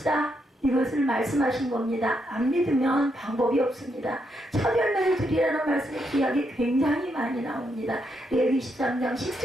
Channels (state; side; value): normal; both; correlation 0.79